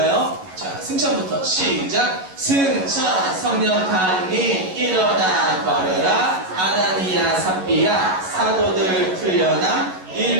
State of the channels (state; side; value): late; left; 11 ms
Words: 자, 승천부터 시작! 승천! 성령 강림 일어나 걸으라. 아나니아 삽비야 사도들 풀려나.